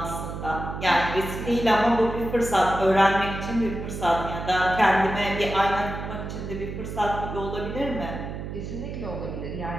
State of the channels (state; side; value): noise; right; hum, 7 dB below the sound